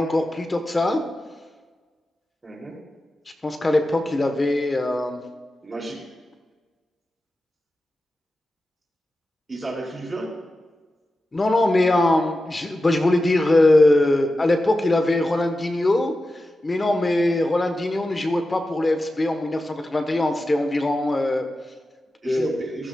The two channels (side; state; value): both; normal; correlation 0.92